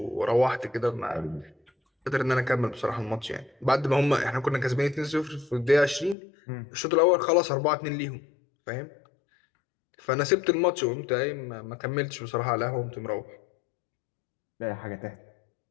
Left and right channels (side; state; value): right; drops out; at 6.2 s